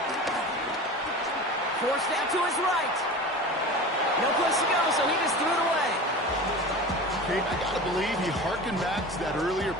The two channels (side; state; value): both; normal; correlation 0.33